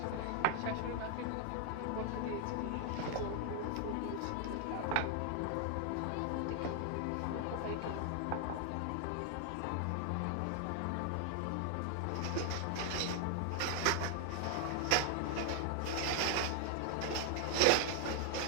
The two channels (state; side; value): different; both; correlation 0.00